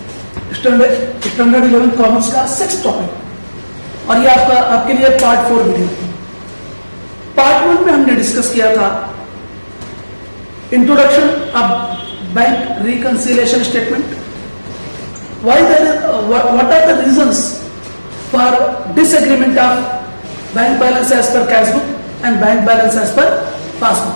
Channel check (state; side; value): inverted; both; correlation -1.00